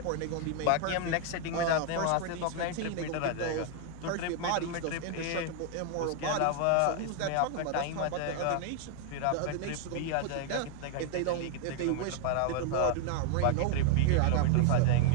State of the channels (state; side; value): different; both; correlation 0.00